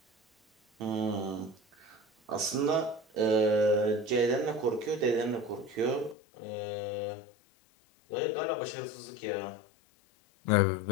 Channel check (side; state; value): right; drops out; at 6.2 s